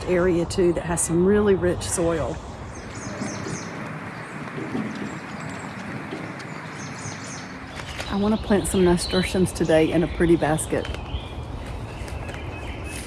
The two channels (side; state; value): both; identical; correlation 1.00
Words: area too that has some really rich soil. I want to plant some nasturtiums today in a pretty basket.